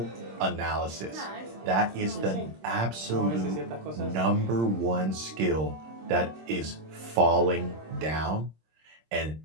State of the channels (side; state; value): left; late; 26 ms